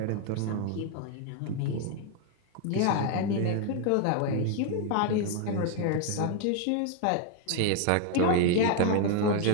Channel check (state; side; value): different; both; correlation 0.00